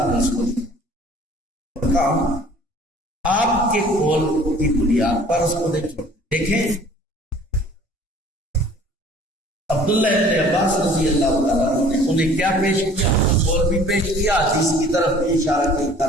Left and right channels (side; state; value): both; normal; correlation 0.51